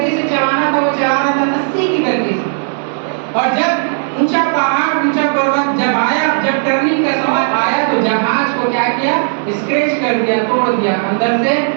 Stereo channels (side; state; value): left; silent; 62 dB below the other